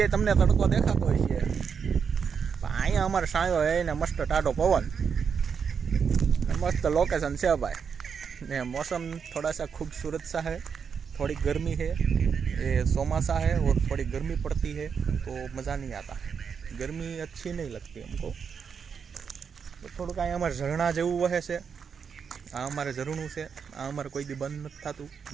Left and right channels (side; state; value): left; quieter; 6.5 dB